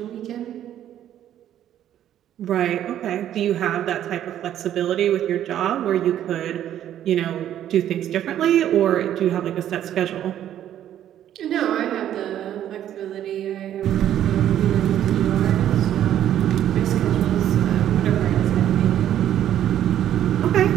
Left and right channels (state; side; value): quieter; left; 11.2 dB